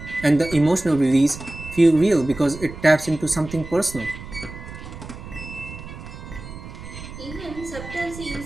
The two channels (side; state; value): right; noise; rumble, 13 dB below the sound